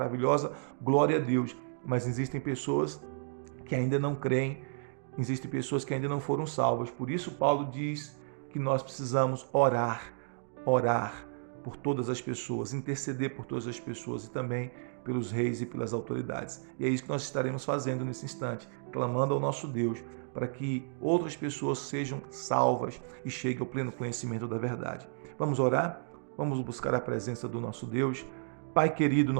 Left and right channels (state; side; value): silent; left; digital silence